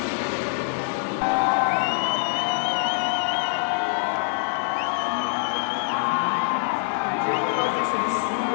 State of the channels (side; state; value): right; silent; digital silence